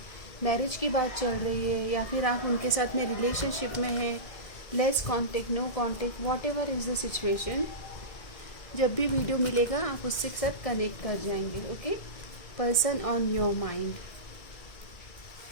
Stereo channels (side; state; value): right; late; 1.7 ms